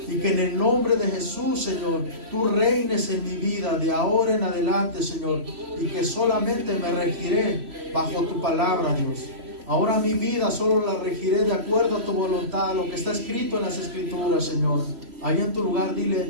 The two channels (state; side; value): late; left; 3.1 ms